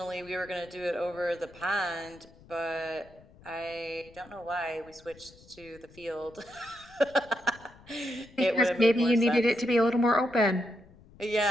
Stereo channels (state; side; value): noise; left; rumble, 24 dB below the sound